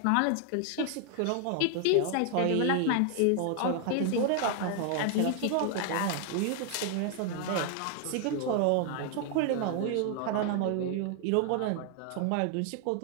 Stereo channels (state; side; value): different; both; correlation 0.00